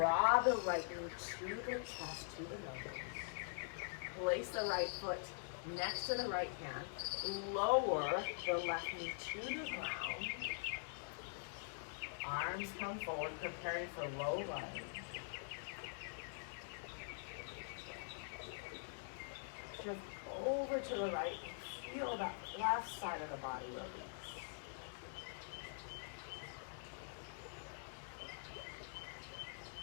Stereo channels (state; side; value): silent; right; digital silence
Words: the right knee to the chest, to the elbow. Place the right foot next to the right hand. Lower the left knee to the ground. Arms come forward, preparing for low lunge. Shift over to the right. Feel that left side of the body release.